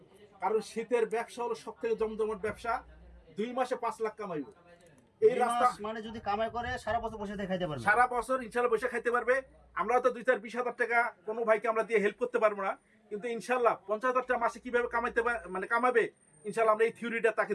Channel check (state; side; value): identical; both; correlation 1.00